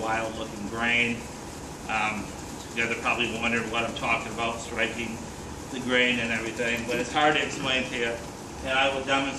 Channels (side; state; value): both; identical; correlation 1.00